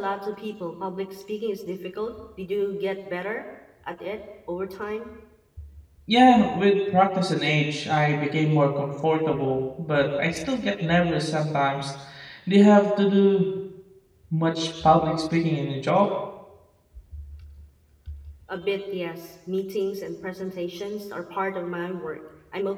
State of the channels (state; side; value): identical; both; correlation 1.00